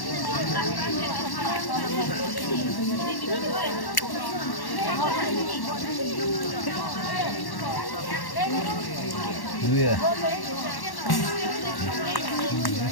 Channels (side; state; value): right; late; 1.1 ms